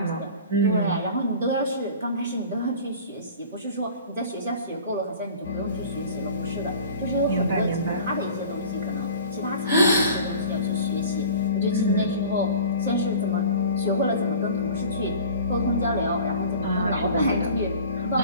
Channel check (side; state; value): both; inverted; correlation -0.43